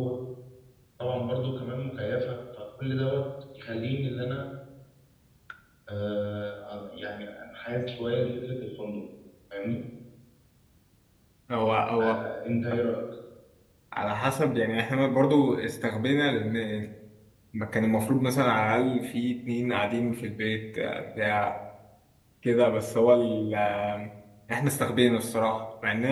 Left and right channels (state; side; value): identical; both; correlation 1.00